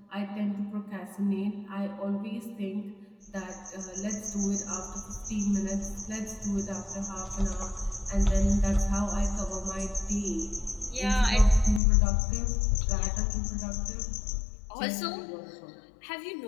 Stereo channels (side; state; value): right; drops out; at 11.8 s